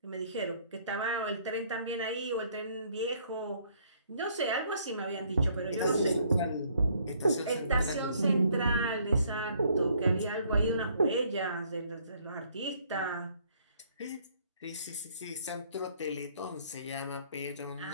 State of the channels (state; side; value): inverted; both; correlation -0.64